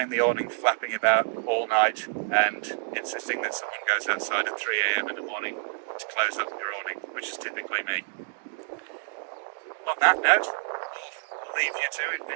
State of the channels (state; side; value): silent; left; digital silence